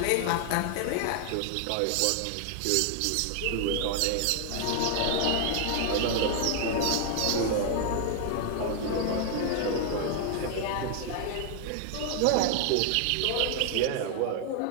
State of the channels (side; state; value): both; different; correlation 0.00